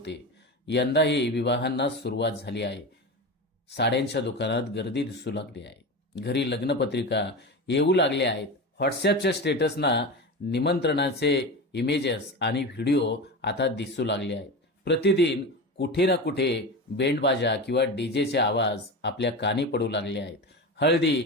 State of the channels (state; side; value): normal; both; correlation 0.25